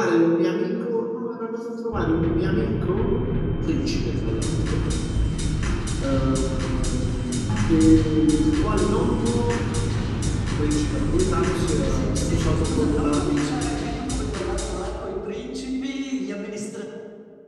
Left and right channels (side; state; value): both; identical; correlation 1.00